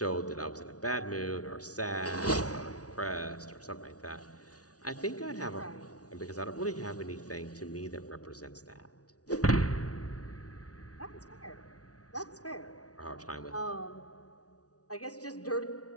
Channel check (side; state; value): right; late; 0.68 ms